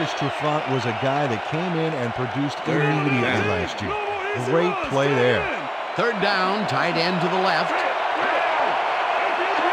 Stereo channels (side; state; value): both; identical; correlation 1.00